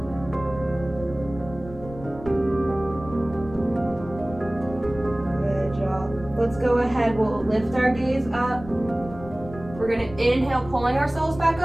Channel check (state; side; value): noise; left; rumble, 15 dB below the sound